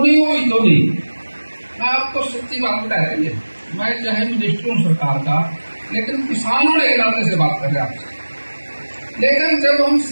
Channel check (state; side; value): inverted; both; correlation -1.00